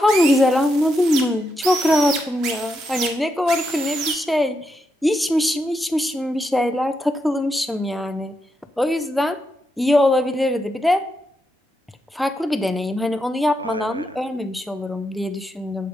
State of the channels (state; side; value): normal; both; correlation 0.83